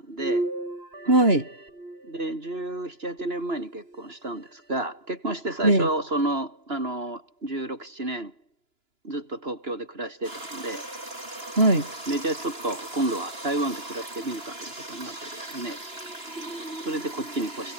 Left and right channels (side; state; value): left; late; 2.9 ms